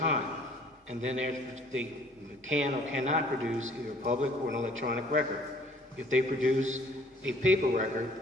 And then they can or cannot produce either a public or an electronic record. If they produce a paper record,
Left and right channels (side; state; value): both; normal; correlation 0.55